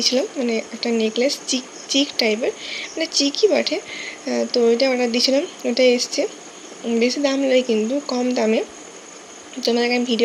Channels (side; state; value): both; identical; correlation 1.00